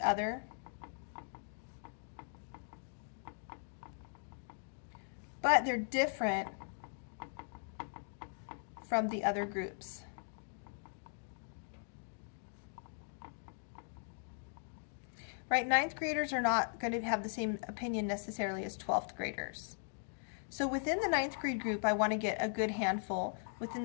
but they're different from the other groups. Right, 9th graders are not going to have the same opinion necessarily as 12th graders. So within the 9th grade group, I want to get a good handful, within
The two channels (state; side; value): silent; right; digital silence